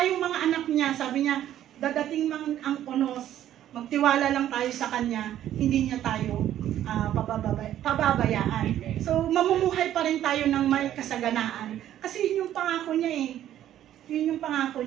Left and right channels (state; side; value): quieter; left; 11.8 dB